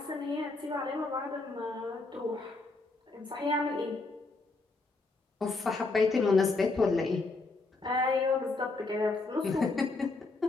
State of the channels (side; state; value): right; quieter; 3.5 dB